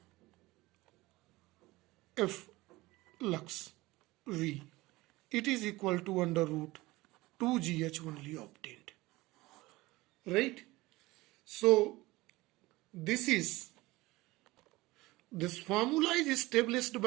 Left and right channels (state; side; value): quieter; left; 20.1 dB